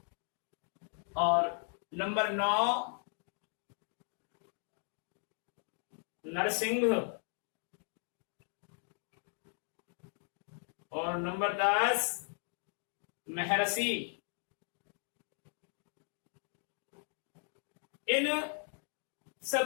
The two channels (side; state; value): right; silent; 53 dB below the other